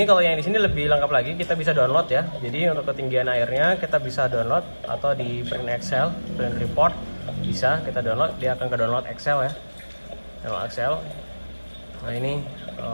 kalau yang di sini lebih lengkap lagi, kita bisa download ya. Jadi untuk ketinggian airnya kita bisa download atau di print Excel, print report bisa kita download. Dia akan ke download Excel ya, download Excel. Nah ini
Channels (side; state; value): both; inverted; correlation -1.00